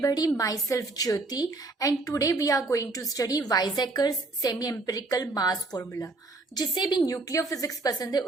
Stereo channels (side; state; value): left; quieter; 3.3 dB